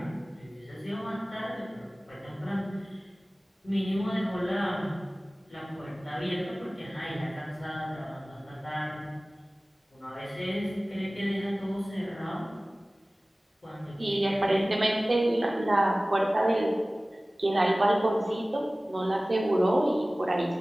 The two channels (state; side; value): normal; both; correlation 0.98